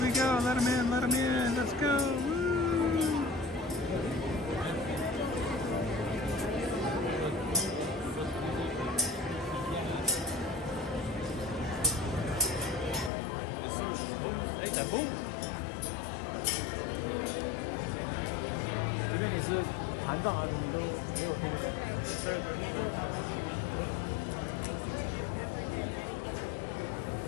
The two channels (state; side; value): drops out; right; at 13.1 s